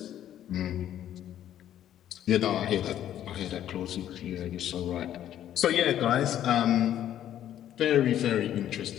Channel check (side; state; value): right; quieter; 11.2 dB